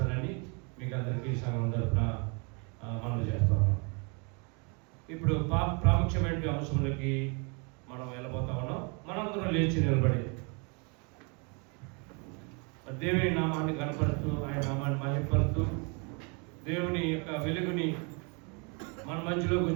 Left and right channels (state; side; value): quieter; left; 33.7 dB